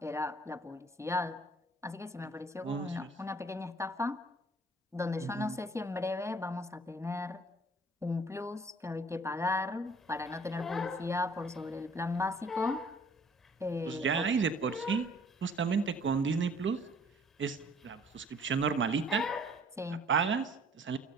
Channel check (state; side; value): normal; both; correlation 0.55